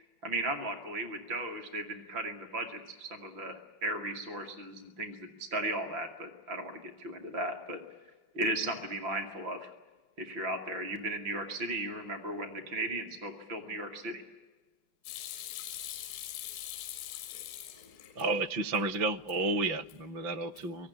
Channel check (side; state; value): left; late; 5.9 ms